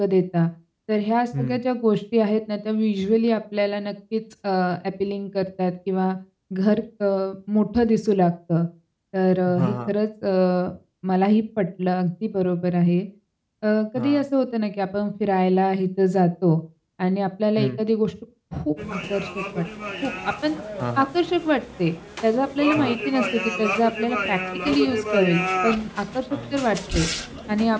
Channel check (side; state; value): both; identical; correlation 1.00